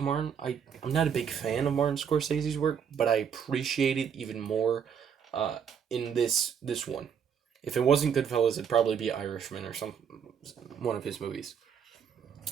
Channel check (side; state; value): left; quieter; 7.6 dB